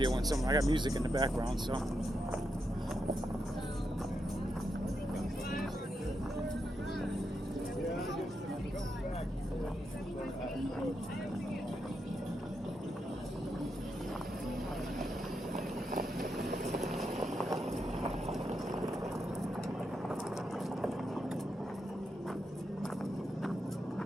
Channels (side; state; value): both; normal; correlation 0.84